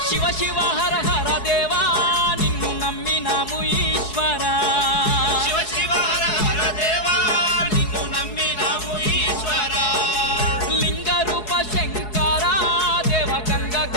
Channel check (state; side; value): late; right; 4.7 ms